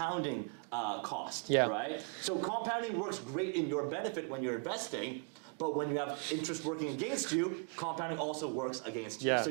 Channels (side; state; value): left; quieter; 37.4 dB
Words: cost, right? So compounding works great in your benefit when you're investing, but when you have interest working against you, compounding also works against you. So